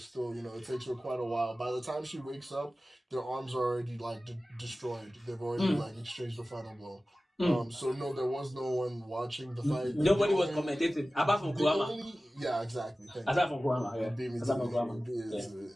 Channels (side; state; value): both; normal; correlation 0.96